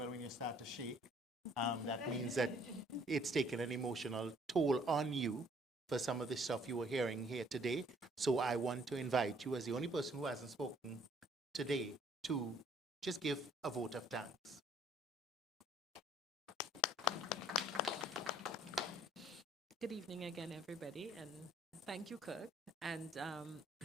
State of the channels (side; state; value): both; normal; correlation 0.61